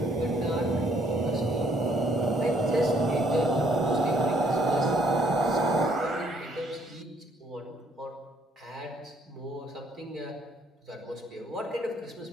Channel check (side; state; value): both; normal; correlation 0.66